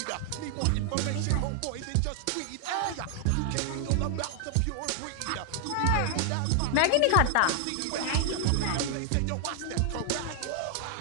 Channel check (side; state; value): both; different; correlation 0.00